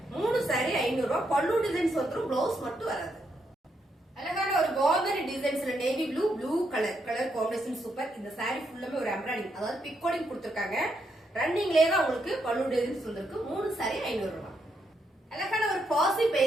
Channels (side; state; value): both; normal; correlation 0.79